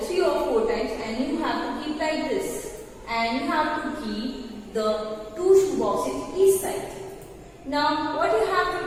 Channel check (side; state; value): both; identical; correlation 1.00